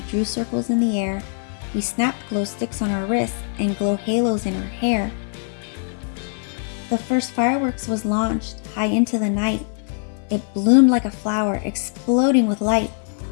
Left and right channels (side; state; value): right; silent; 60 dB below the other